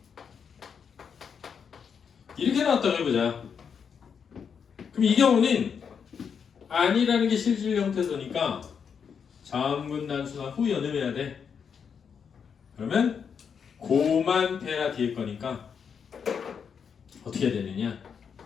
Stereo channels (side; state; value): right; quieter; 6.8 dB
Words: 이렇게 나왔다고 해보자. 그럼 이 경우는 아니라는 게 실질 형태소니까 자음군 단수나 후 연음해야 돼. 그러면 고만 페라 뒤에 거니까 어떻게 해야 되느냐?